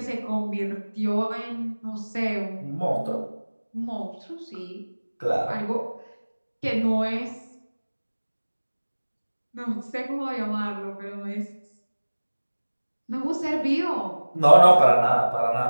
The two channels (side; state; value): both; inverted; correlation -1.00